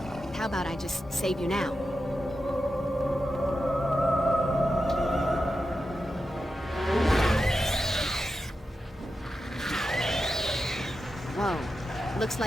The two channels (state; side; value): normal; both; correlation 0.90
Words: How about I just save you now? Whoa. Looks